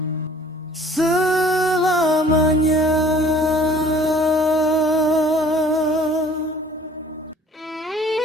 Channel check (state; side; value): normal; both; correlation 0.53